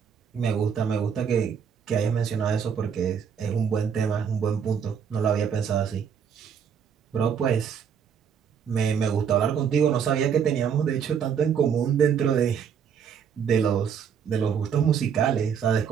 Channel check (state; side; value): quieter; left; 7.5 dB